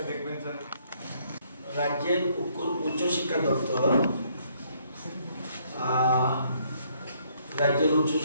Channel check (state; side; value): inverted; both; correlation -0.68